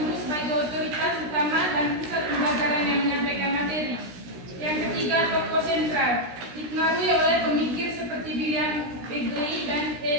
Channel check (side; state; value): left; late; 16 ms